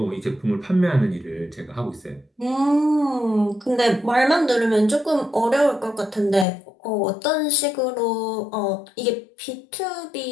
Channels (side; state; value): right; drops out; at 6.5 s